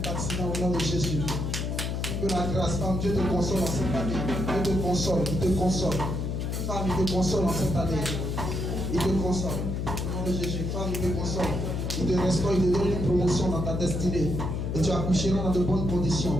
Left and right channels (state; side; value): noise; left; hum, 2 dB below the sound